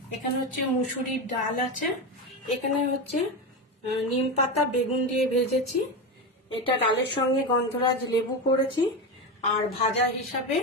এখানে হচ্ছে মুসুরির ডাল আছে, এখানে হচ্ছে নিম পাতা বেগুন দিয়ে ভেজেছি, এটা ডালের সঙ্গে গন্ধরাজ লেবু করেছি, আর ভাজা হিসাবে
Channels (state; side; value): normal; both; correlation 0.17